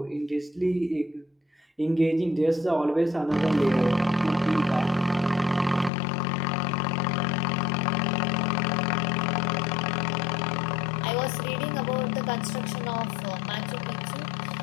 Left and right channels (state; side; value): drops out; right; at 5.9 s